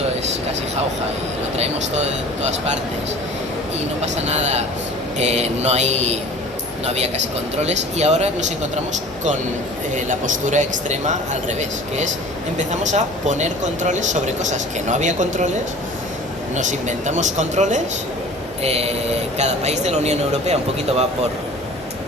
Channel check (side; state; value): both; normal; correlation 0.43